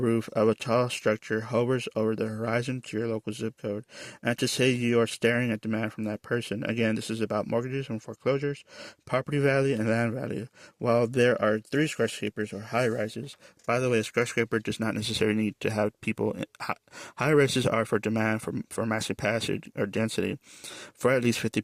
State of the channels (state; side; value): identical; both; correlation 1.00